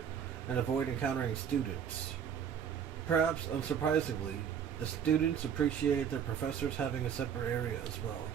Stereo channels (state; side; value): quieter; left; 8.2 dB